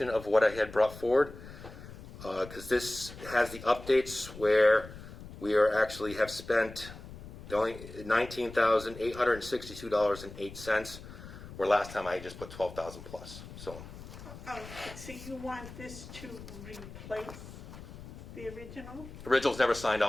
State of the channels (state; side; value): noise; left; rumble, 14 dB below the sound